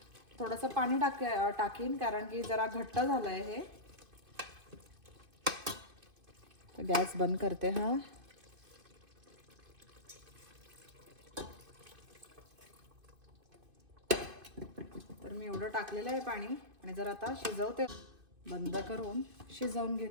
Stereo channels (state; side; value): late; left; 2.5 ms